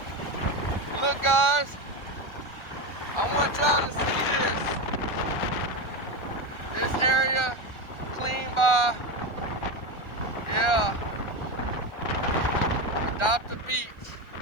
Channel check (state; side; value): late; right; 1.4 ms